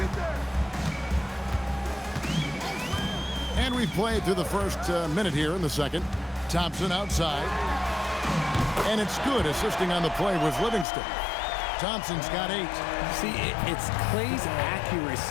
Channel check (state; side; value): drops out; right; at 10.9 s